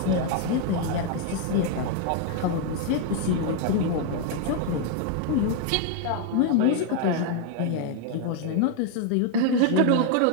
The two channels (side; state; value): both; different; correlation 0.00